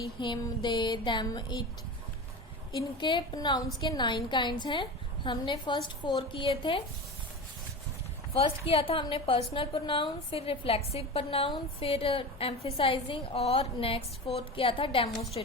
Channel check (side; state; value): both; normal; correlation 0.28